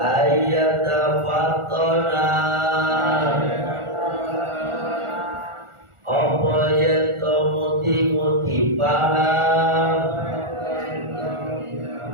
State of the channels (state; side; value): late; left; 1.4 ms